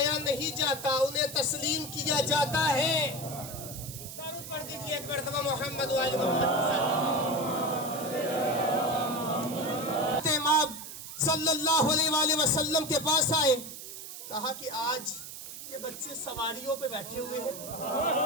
نہیں جاتا، انہیں تسلیم کیا جاتا ہے. درود پڑھ دیجئے ایک مرتبہ محمد وآل محمد کے ساتھ. امام صلی اللہ علیہ وآلہ وسلم کے پاس آئے، کہا کہ آج یہ بچے سواریوں پہ بیٹھے ہوئے ہیں.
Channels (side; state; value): right; noise; hiss, 11 dB below the sound